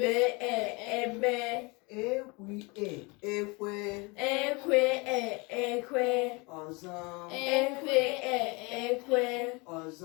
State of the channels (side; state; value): right; quieter; 27.9 dB